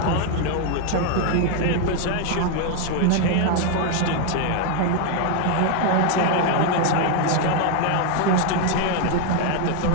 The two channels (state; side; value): different; both; correlation 0.01